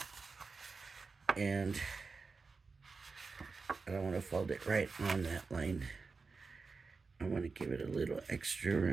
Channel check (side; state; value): left; quieter; 4.4 dB